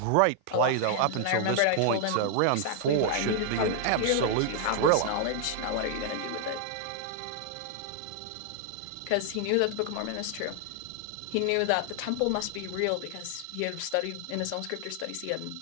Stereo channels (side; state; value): both; different; correlation 0.00